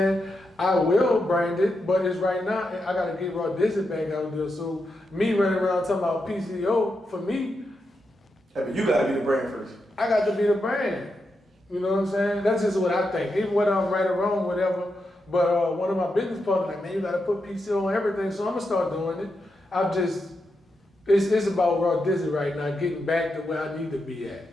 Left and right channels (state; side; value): normal; both; correlation 0.86